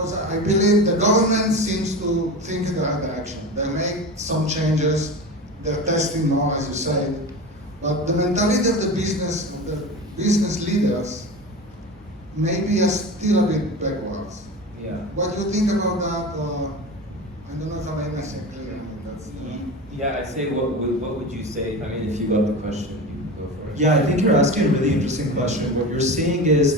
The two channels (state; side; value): normal; both; correlation 0.28